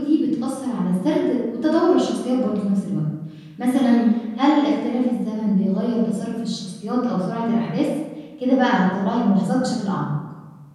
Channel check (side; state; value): both; identical; correlation 1.00